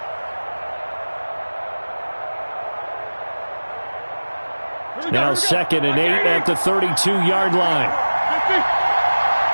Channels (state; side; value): inverted; both; correlation -1.00